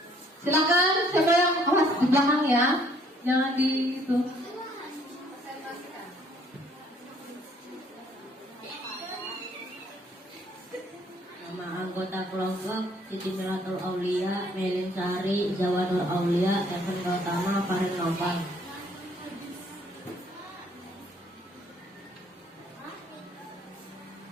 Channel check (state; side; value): normal; both; correlation 0.62